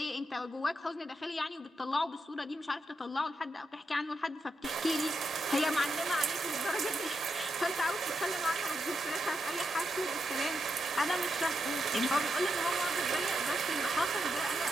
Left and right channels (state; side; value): normal; both; correlation 0.84